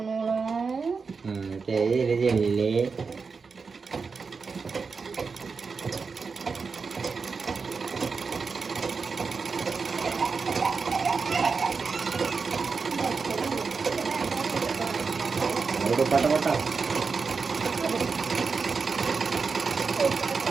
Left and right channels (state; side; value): quieter; left; 5.0 dB